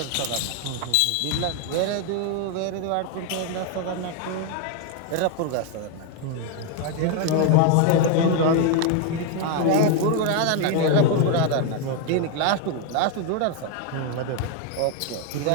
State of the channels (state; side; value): different; both; correlation 0.01